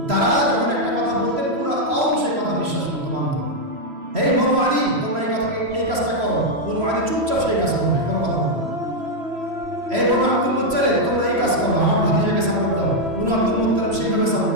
তারা যখন একটা কথা বলতেন পুরো কওম সেই কথা বিশ্বাস করতো, মানত। এই বনু আদি, তোমরা এই কাজটা করো, বনু আদি চুপচাপ সেই কাজ করবে, কোনো কথা বলবে। এই বনু আব্দুল মুত্তালিব, তোমরা এই কাজ করো, আমার ভাতিজাকে সাপোর্ট দাও, বনু আব্দুল মুত্তালিব সেইভাবে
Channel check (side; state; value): left; late; 3.0 ms